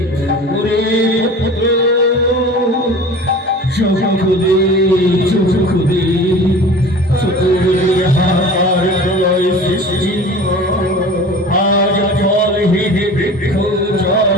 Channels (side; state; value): both; normal; correlation 0.39